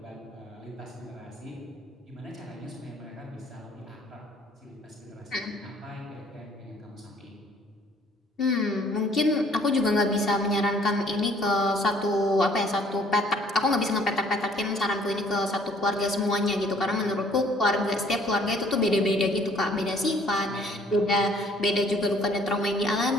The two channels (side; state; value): both; normal; correlation 0.59